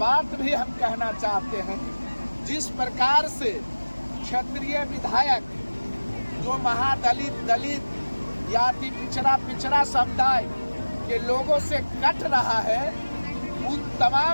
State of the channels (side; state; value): both; inverted; correlation -1.00